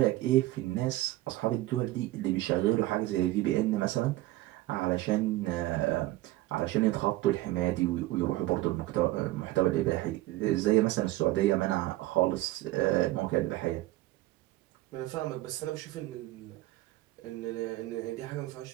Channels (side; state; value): left; quieter; 17.4 dB